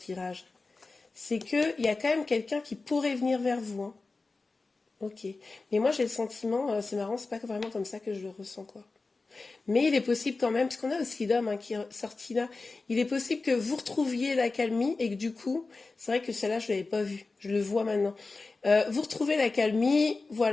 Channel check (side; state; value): right; quieter; 3.7 dB